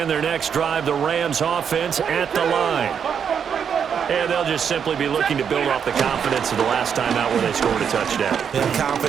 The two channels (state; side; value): quieter; left; 7.5 dB